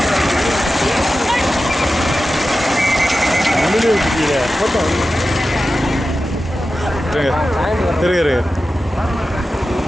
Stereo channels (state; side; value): normal; both; correlation 0.93